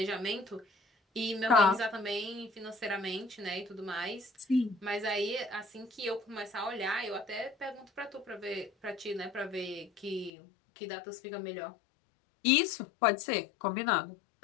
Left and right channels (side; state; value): right; drops out; at 10.3 s